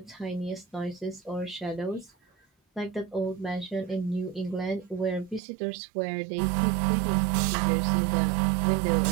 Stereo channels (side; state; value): left; drops out; at 5.4 s